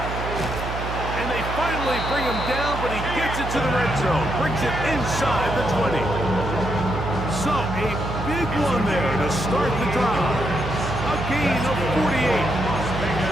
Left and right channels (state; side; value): noise; right; hum, 6 dB below the sound